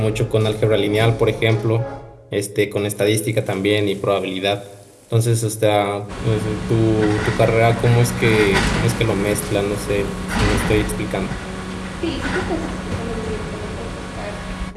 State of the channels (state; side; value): identical; both; correlation 1.00